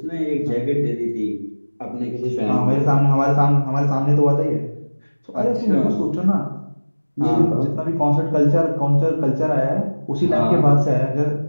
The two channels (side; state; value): both; inverted; correlation -1.00